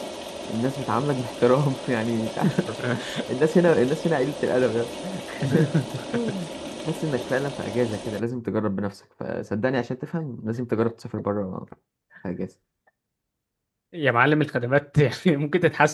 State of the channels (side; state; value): both; identical; correlation 1.00